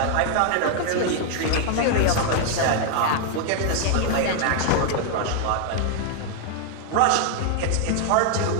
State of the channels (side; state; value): both; different; correlation 0.00